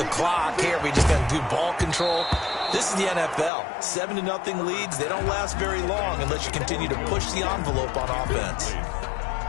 clock? Hey, are we just going to do ball control? This is the NFL. 7-0 leads, they don't last very long unless you continue to push the envelope on offense.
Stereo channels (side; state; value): right; drops out; at 3.5 s